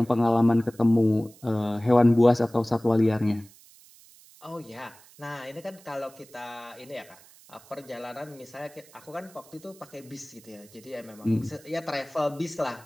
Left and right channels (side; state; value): right; noise; hiss, 24 dB below the sound